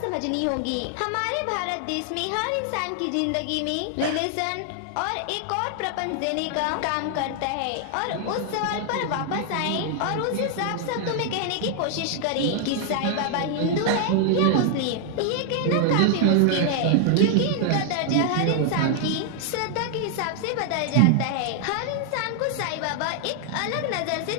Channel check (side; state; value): both; different; correlation 0.00